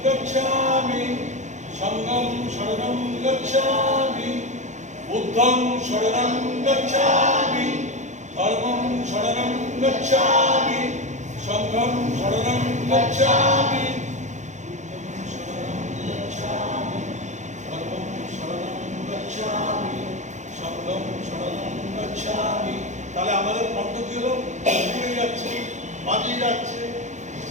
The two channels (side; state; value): left; late; 0.35 ms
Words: গচ্ছামি সঙ্গং শরণং গচ্ছামি বুদ্ধং শরণং গচ্ছামি কর্মং শরণং গচ্ছামি সঙ্গং শরণং গচ্ছামি তাহলে আমাদের কণ্ঠ কি হলো ঘুরে যাচ্ছে বাজিয়ে যাচ্ছে